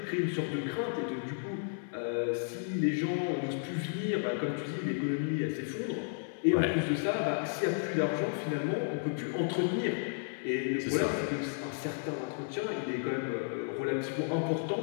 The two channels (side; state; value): right; silent; 56 dB below the other